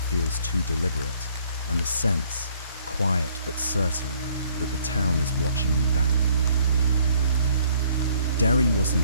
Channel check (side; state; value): both; inverted; correlation -0.62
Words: too deliberate, and the sense, quiet but certain, that the town is watching you back. Derry wasn't